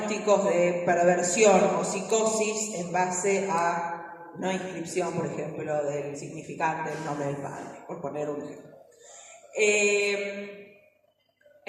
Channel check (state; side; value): identical; both; correlation 1.00